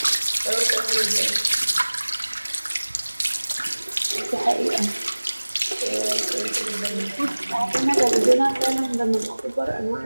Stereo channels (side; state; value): both; inverted; correlation -1.00